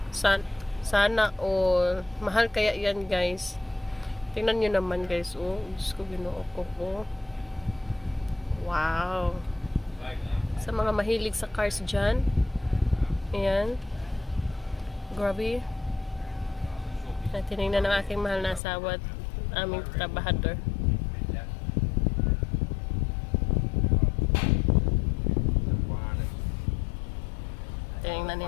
Sana all. Mahal kaya yan, guys. Tingnan nyo naman, guys. Oh, Diyos ko, ginoo ko. Oh. Wow. Sa mga mahilig sa cars dyan. Ayan. Grabe. Tinignan ng aking mahal na asawa at aming trabahador. Tinignan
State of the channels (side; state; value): right; drops out; at 18.6 s